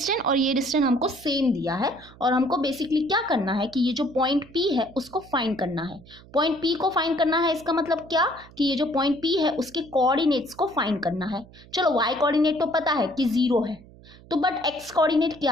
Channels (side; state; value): right; noise; hum, 22 dB below the sound